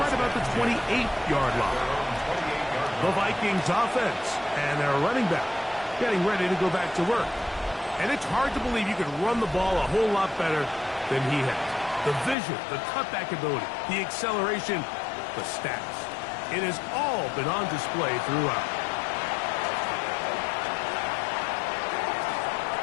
about the 28-yard line. The Vikings offense and their running back getting ready to go back to work. And it's hard to believe you can run the ball a whole lot better than he has. The vision, the cutback ability, the acceleration, the stats. It has all been on display throughout.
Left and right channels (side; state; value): right; drops out; at 12.4 s